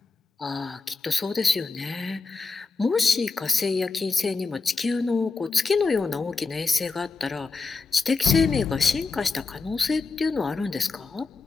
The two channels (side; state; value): right; quieter; 4.2 dB